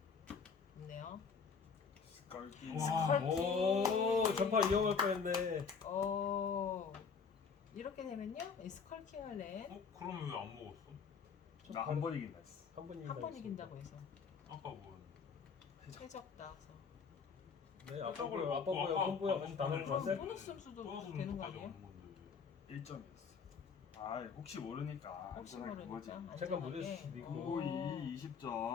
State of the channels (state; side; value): quieter; right; 5.8 dB